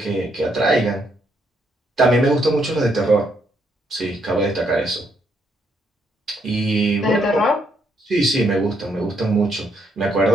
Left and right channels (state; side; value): normal; both; correlation 0.74